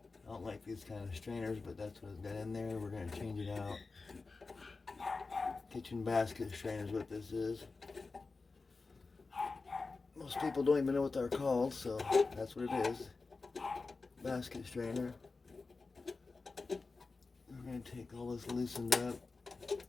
don't like these kind of strainers, but that's what it's got in there. We're going to change it out. Kitchen basket strainer is what this is. Most people don't even know what they're called, so that's what it is. Basket strainer. We're going to take all this loosened up.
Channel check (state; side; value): quieter; right; 4.0 dB